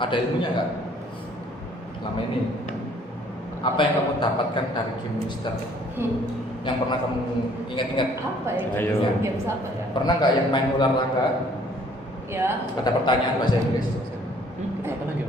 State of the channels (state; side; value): normal; both; correlation 0.59